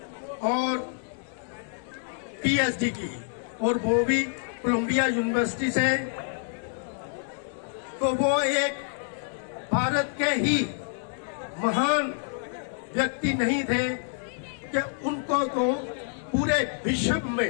और पीएचडी की, और वो भी कोलंबिया यूनिवर्सिटी से। तो वो एक भारत के ही महान व्यक्ति नहीं थे कि उनको तो पूरे विश्व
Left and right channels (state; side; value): silent; right; digital silence